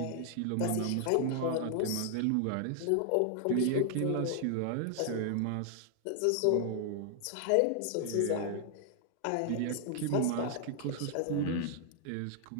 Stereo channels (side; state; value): both; different; correlation 0.00